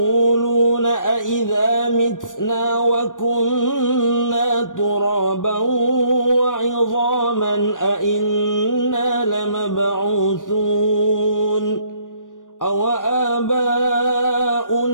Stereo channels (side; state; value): right; late; 0.88 ms